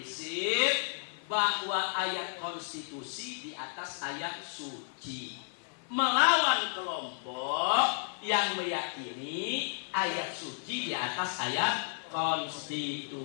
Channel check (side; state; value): right; silent; 56 dB below the other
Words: bahwa ayat konstitusi di atas ayat suci, melawan kelompok yang meyakini ayat suci di atas ayat